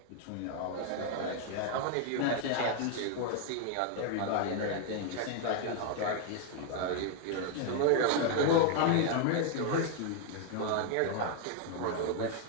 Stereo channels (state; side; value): different; both; correlation 0.01